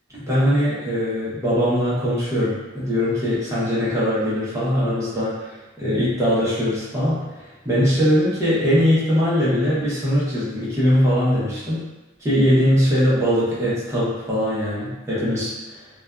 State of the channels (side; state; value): both; normal; correlation 0.64